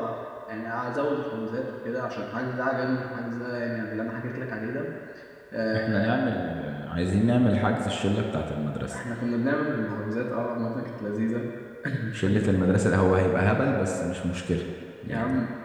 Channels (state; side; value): identical; both; correlation 1.00